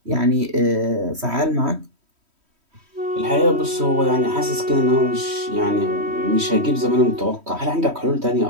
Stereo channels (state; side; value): late; left; 3.1 ms